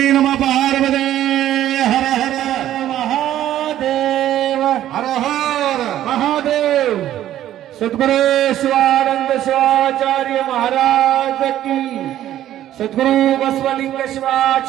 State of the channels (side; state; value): left; quieter; 12.4 dB